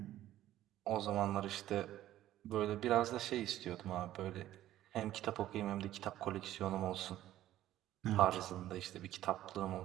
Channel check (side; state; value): left; quieter; 13.5 dB